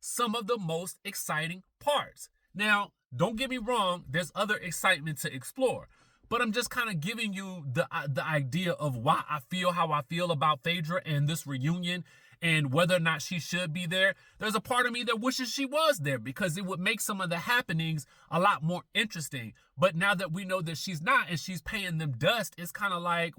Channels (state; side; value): identical; both; correlation 1.00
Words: of the most exciting parts. Now, don't get me wrong, there's other excitement to explore, but I'm just kind of giving you the idea of why I feel how I feel about Phaedra and this reunion and whether or not she should be there. There's a part of me that wishes she was there because it would make some of the happenings a lot more interesting. But now that we know that she's not and she's paying them dust, it's kind of like,